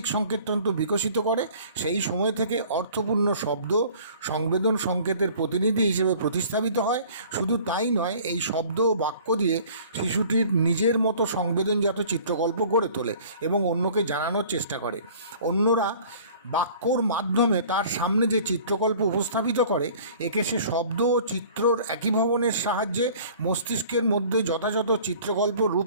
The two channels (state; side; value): inverted; both; correlation -0.49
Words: সংকেততন্ত্র বিকশিত করে, সেই সময় থেকে অর্থপূর্ণ শব্দ সংবেদন সংকেতের প্রতিনিধি হিসেবে প্রতিস্থাপিত হয়। শুধু তাই নয়, এই শব্দ ও বাক্য দিয়ে শিশুটির নিজের মতো সংবেদনজাত চিত্রকল্প গড়ে তোলে এবং অন্যকে জানানোর চেষ্টা করে। অন্যরা বাক্যর মাধ্যমে তার সামনে যে চিত্রকল্প উপস্থাপিত করে, একে সে শব্দ ও চিত্রর একীভবনের সাহায্যে মস্তিষ্কের মধ্যে যথাযথ চিত্রকল্প,